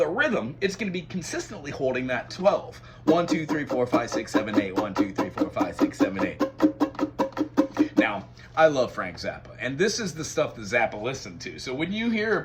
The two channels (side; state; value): both; identical; correlation 1.00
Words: rhythm, it's going to be consistently holding that 12. 1, 2, 3, 4, 5, 6, 7, 8. 1, 2, 3, 4, 5, 6, 7, 8. Now, I love Frank Zappa, and this is the stuff that Zappa listened to. So when you